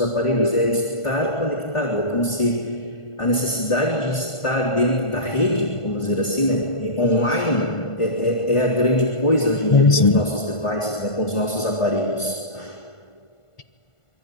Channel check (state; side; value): late; right; 1.5 ms